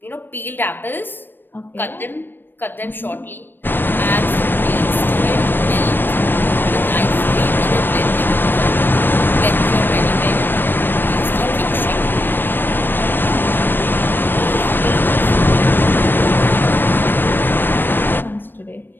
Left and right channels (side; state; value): right; late; 0.095 ms